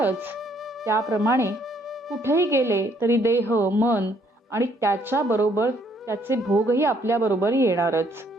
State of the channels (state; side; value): normal; both; correlation 0.67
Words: त्याप्रमाणे कुठेही गेले तरी देह, मन आणि त्याच्याबरोबर त्याचे भोगही आपल्याबरोबर येणारच.